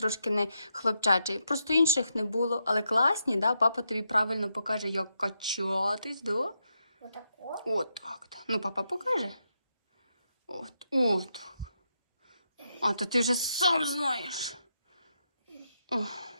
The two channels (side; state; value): both; inverted; correlation -0.82